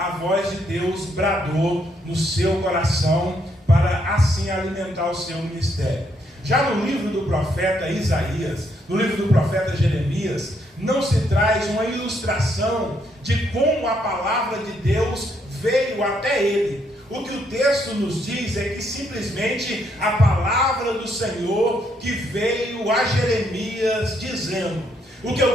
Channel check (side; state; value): both; normal; correlation 0.74